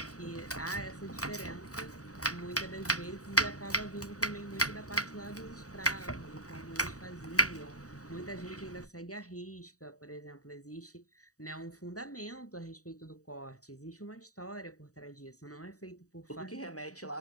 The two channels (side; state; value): right; late; 0.66 ms